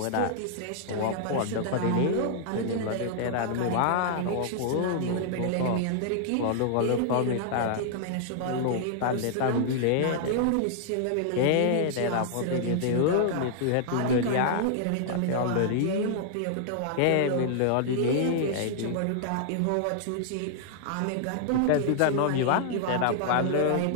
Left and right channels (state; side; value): different; both; correlation -0.01